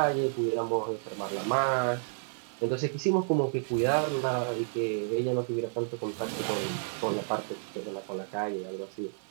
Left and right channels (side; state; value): left; silent; digital silence